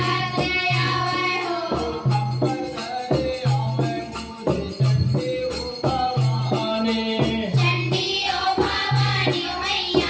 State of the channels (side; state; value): both; identical; correlation 1.00